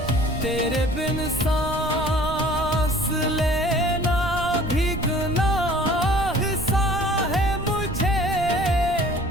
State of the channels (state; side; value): noise; right; rumble, 9 dB below the sound